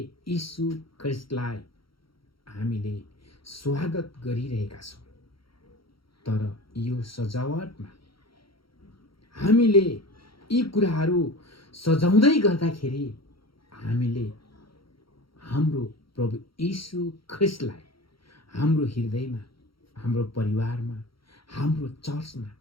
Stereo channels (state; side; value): late; right; 0.74 ms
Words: यीशु ख्रीष्टलाई हामीले स्वागत गरिरहेका छौँ। तर यो सजावटमा हामीले यी कुराहरू सजाउँदै गर्दाखेरि हामीले हाम्रो प्रभु यीशु ख्रीष्टलाई हाम्रो हृदयमा, हाम्रो परिवारमा, हाम्रो चर्चमा